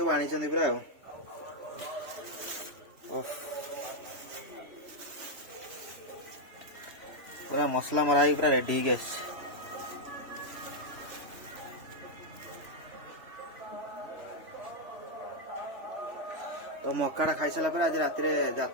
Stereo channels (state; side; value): late; left; 3.0 ms